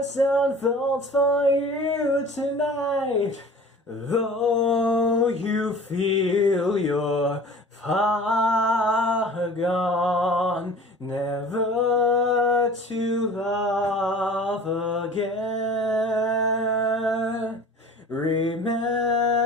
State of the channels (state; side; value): normal; both; correlation 0.43